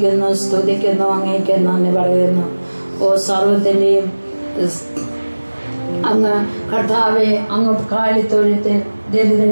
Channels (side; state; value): both; inverted; correlation -1.00